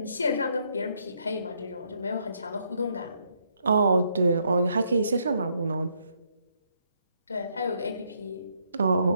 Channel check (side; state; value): both; inverted; correlation -0.74